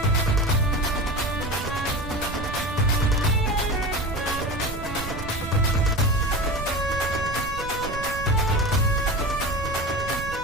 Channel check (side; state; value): right; noise; rumble, 9 dB below the sound